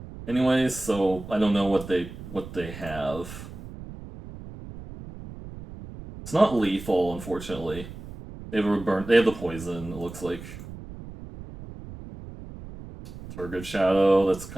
Anyways, so I don't know what they have. It's not lethal, unfortunately. They have They have the poison. It looks like Turgid Shadow. That's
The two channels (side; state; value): right; noise; rumble, 13 dB below the sound